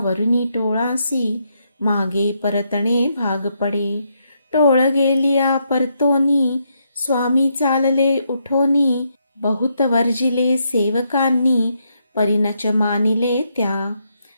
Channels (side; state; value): both; inverted; correlation -0.78